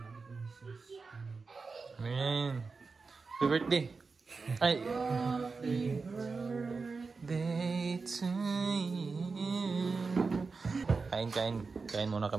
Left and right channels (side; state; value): left; quieter; 4.4 dB